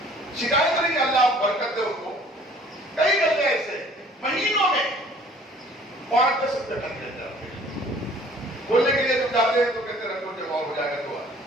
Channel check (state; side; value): normal; both; correlation 0.54